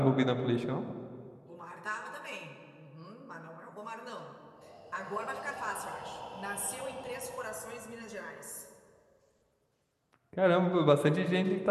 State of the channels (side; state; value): both; identical; correlation 1.00